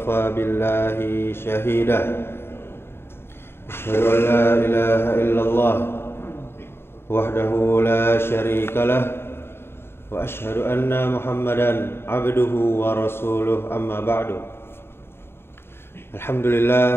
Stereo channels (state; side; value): late; right; 0.11 ms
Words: billahi shahida. Asyhadu an la ilaha illallah wahdahu la syarika lah wa asyhadu anna Muhammadan abduhu wa rasuluh, amma ba'du.